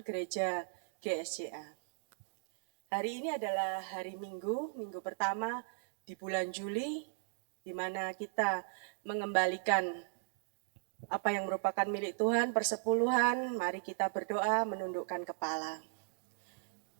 gereja GSCA. Hari ini adalah hari Minggu pertama di bulan Juli, di mana kita mengembalikan apa yang merupakan milik Tuhan, persepuluhan. Mari kita berdoa menundukkan kepala.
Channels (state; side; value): silent; left; digital silence